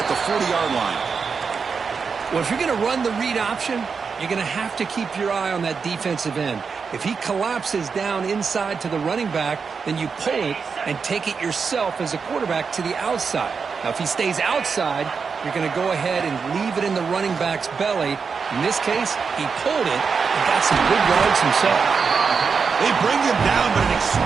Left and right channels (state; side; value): quieter; left; 5.5 dB